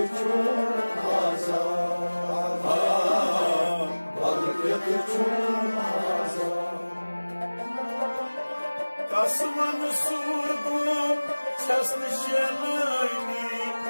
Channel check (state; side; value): inverted; both; correlation -1.00